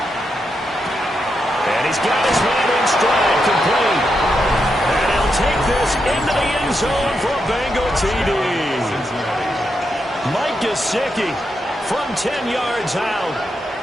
And he's got his man in stride, complete. And he'll take this into the end zone for a Bengal TD. Mike Gesicki from 10 yards out.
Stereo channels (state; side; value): normal; both; correlation 0.84